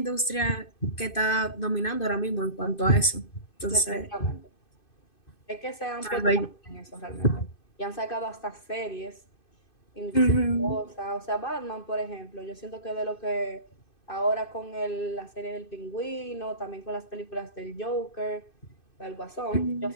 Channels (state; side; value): late; right; 2.6 ms